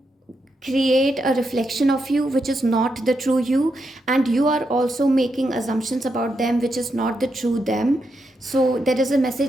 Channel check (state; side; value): normal; both; correlation 0.83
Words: create a reflection of you which is not the true you, and you are also making assumptions about them which is not the true them. So there is a